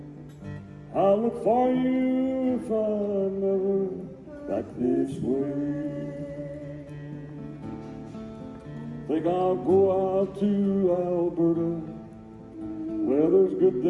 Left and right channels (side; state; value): both; identical; correlation 1.00